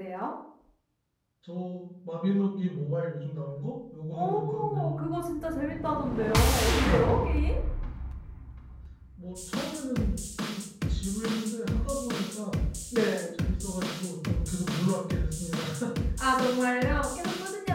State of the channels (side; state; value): both; identical; correlation 1.00